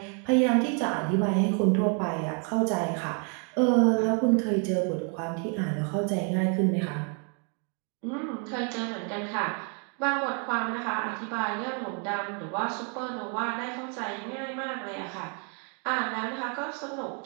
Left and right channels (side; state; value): left; quieter; 39.6 dB